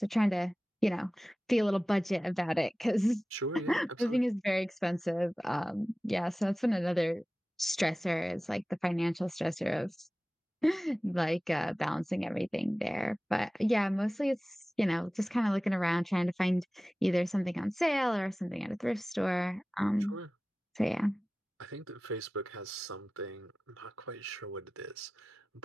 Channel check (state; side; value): normal; both; correlation 0.97